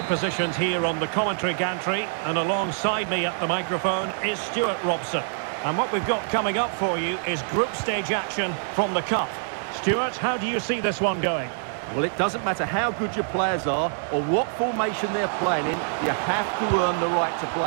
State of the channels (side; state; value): left; silent; digital silence